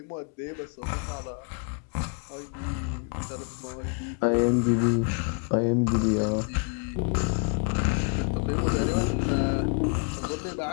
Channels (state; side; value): quieter; right; 38.9 dB